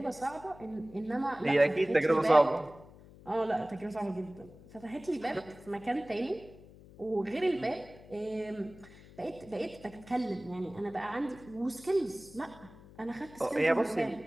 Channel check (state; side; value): noise; left; hum, 21 dB below the sound